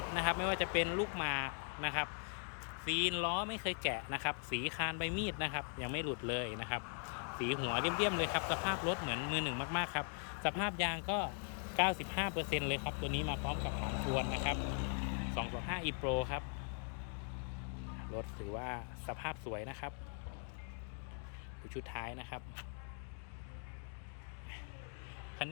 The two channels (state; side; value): silent; right; 51 dB below the other